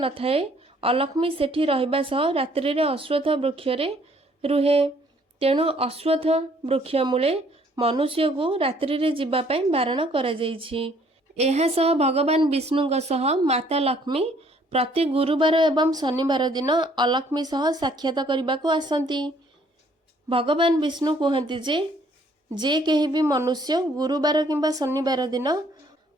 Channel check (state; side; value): normal; both; correlation 0.62